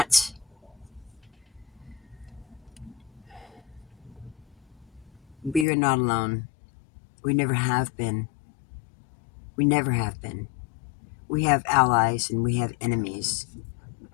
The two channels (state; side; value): drops out; right; at 5.7 s